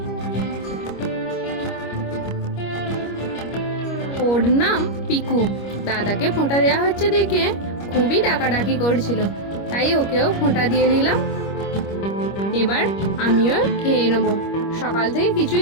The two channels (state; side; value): late; right; 25 ms